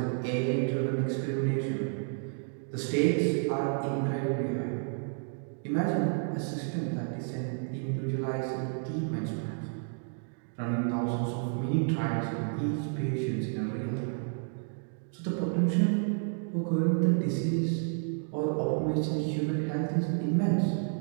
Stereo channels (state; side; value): silent; left; 57 dB below the other